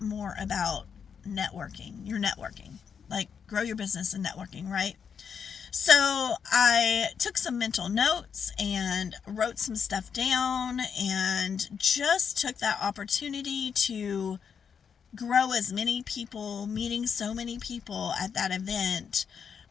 more about your networking, like grow your business and networking, right? So I took some mental notes and wrote some stuff down and just took that opportunity to grow as many people, meeting so many people at that event.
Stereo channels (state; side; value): quieter; right; 6.9 dB